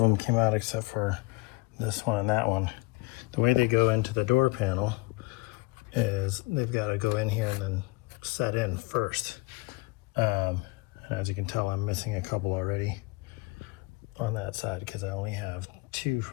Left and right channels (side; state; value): right; quieter; 23.5 dB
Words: them came out except for this one and that one. The way they go into the door panel is they've got to go in here and then set in first. And as you can tell, I'm missing a couple already on that side because I only have 2